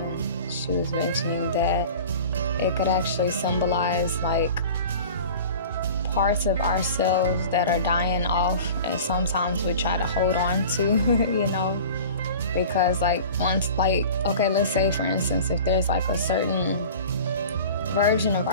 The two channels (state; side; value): inverted; both; correlation -0.40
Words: she was mentioning that it could actually symbolize like parts of ourselves that are dying off, and sometimes we try to hold on to, because like once, like, okay, let's say for instance, if there's like a certain version of